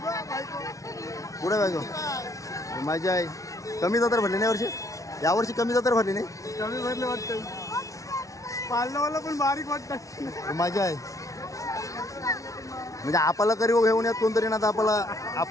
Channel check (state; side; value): late; right; 0.16 ms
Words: पुढे बायको मजा आहे. कमी जत्रा भरली नाही वर्षी, यावर्षी कमी जत्रा भरली नाही. कमी भरले वाटतं, पाळणावाला पण बारीक वाटतं. मजा आहे म्हणजे आपल्याला करी घेऊन यात कोणतरी ना, आपल्याला